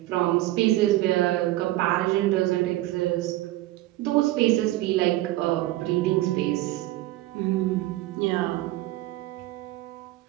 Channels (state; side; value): quieter; left; 16.8 dB